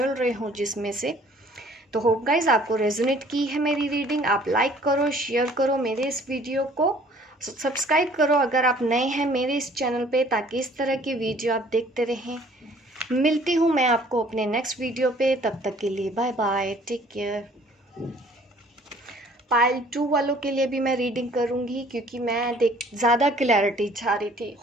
रहे हो जिसमें से। तो होप गाइज आपको रेजोनेट की है मेरी रीडिंग। आप लाइक करो, शेयर करो मेरे इस वीडियो को, सब्सक्राइब करो अगर आप नए हैं मेरे इस चैनल पे, ताकि इस तरह की वीडियो आप देखते रहें। मिलती हूँ मैं आपको अपने नेक्स्ट वीडियो पे, तब तक के लिए bye bye, take care. Pile 2 वालों के लिए भी मैं रीडिंग करूँगी, क्योंकि मैं ज़्यादा क्लैरिटी चाह रही थी।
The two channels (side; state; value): both; normal; correlation 0.56